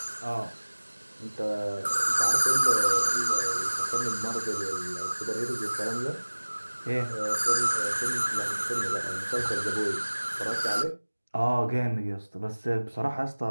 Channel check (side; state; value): both; inverted; correlation -1.00